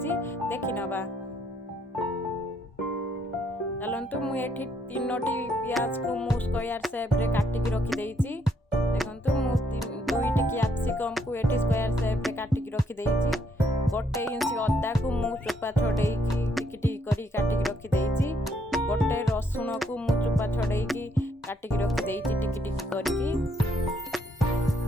देखि नबा। चलंतु मु एठी 3टी प्याज को मु स्क्वायर शेप रे काटी के रखी देइची। देखंतु मु 2टी कैप्सिकम को एठी स्क्वायर शेप रे काटी के रखी देइची। गोटे इंच अदा को मु चोपा छड़ेई की टिकी करी काटी के रखी देइची। गोटे रसुण को मु चोपा छड़ेई की काटी के रखी देइची टिकी टिकी करके।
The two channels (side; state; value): both; normal; correlation 0.71